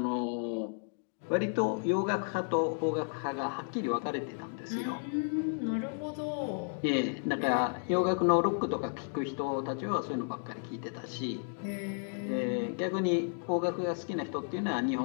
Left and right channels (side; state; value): right; silent; 56 dB below the other